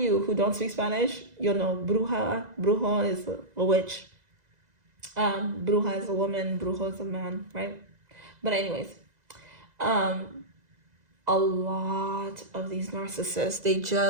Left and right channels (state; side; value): late; left; 2.0 ms